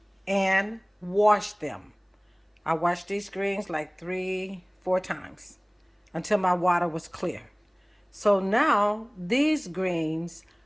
and wash them. I washed these greens like 3-4 times until my water was clear. So now these greens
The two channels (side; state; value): both; identical; correlation 1.00